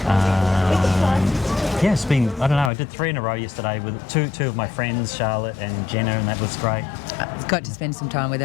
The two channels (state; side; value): drops out; right; at 2.7 s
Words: it's been, I don't know, I did 3 in a row yesterday with two of my friends, Charlotte and Jenna, and that was great. Got to spend some time with